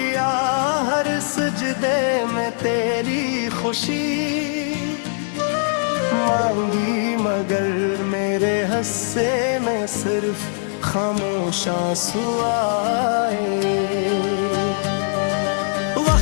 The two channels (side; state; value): right; silent; digital silence